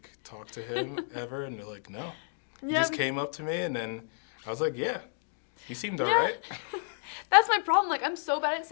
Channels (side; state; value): right; silent; digital silence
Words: talk to him ever? And they're like, no. He Yeah, just came up to me, and then I was like, yeah, he seemed Yeah. alright. That's my problem. Like, I'm so bad at